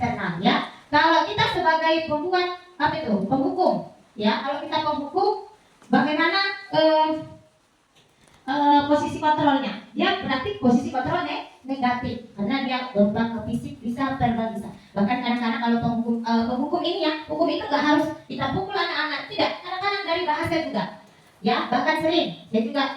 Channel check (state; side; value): identical; both; correlation 1.00